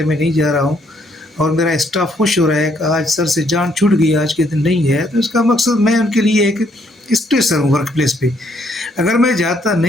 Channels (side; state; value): both; normal; correlation 0.70